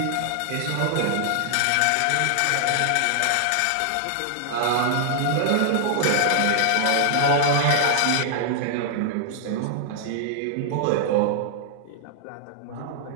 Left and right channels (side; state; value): both; different; correlation -0.01